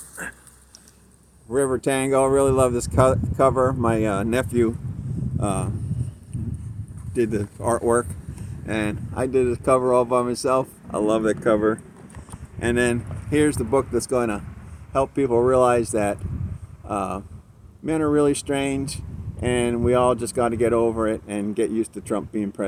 River Tango. I really love this cover. My nephew did the artwork, and I did the cover all by myself. I love that cover. And then here's the book that's going to help people realize that men are really strange, and we all just got to get over it and get used to Trump being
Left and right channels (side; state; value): both; identical; correlation 1.00